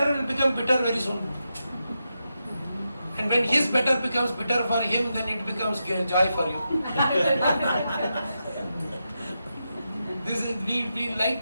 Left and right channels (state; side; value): inverted; both; correlation -0.87